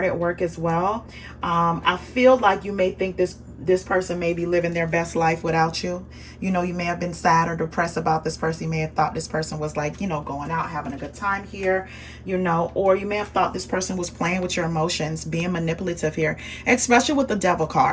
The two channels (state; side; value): identical; both; correlation 1.00